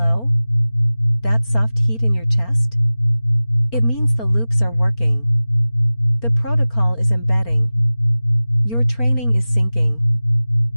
That soft heat in your chest? It means the loops are working. The protocol is embedding. Your training is sinking.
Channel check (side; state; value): right; late; 4.4 ms